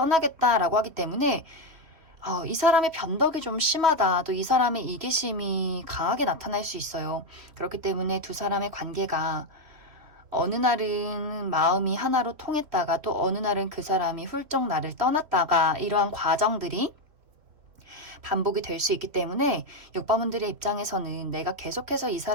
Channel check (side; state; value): left; late; 3.0 ms